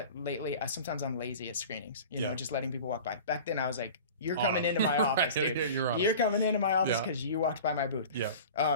lately, sometimes I'm lazy at screenings, just letting people walk by. Back then I was like, You're coming into my office, Right. dude. You're coming into my office Yeah. because you walked by my booth. Yeah. How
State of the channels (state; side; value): inverted; both; correlation -0.39